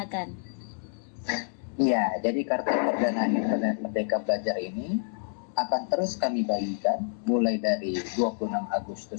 Iya, jadi kartu perdana internet Merdeka Belajar ini akan terus kami bagikan mulai dari 26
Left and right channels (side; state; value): right; silent; digital silence